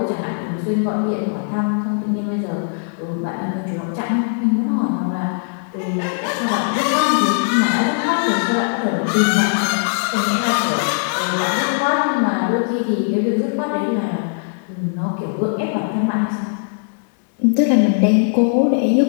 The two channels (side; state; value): right; silent; 66 dB below the other